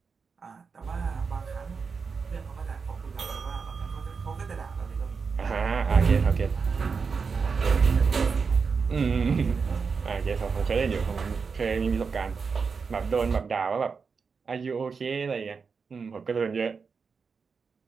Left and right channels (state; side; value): quieter; left; 5.3 dB